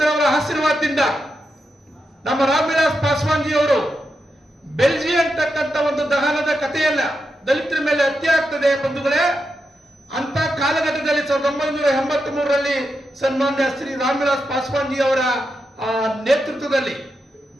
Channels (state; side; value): normal; both; correlation 0.87